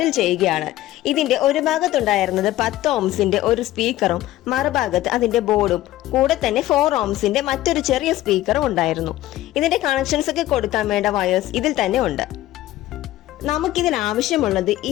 ചെയ്യുകയാണ്. ഇതിന്റെ ഒരു ഭാഗത്തുണ്ടായിരുന്നത് 10 ഓംസിന്റെ ഒരു സ്പീക്കറും മറുഭാഗത്ത് അതിന്റെ ബോർഡും കൂടെ തന്നെ 4 ഓംസിന്റെ മറ്റൊരു ചെറിയ സ്പീക്കറും ഉണ്ടായിരുന്നു. ഇതിന്റെ കണക്ഷൻസ് ഒക്കെ കൊടുക്കാൻ വേണ്ട വയേഴ്സ് ഇതിൽ തന്നെ ഉണ്ട്. നമുക്കിതിൽ ആവശ്യമുള്ളത്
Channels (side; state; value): right; quieter; 15.3 dB